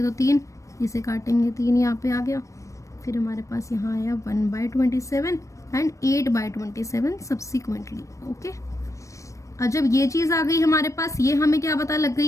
तो 3, इसे काटेंगे 3, यहाँ पे आ गया। फिर हमारे पास यहाँ आया 1/27 एंड 8/27 सब्सिक्वेंटली। ओके, और जब ये चीज़ आ गई हमारे पास, ये हमें क्या पता लग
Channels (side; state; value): right; late; 0.15 ms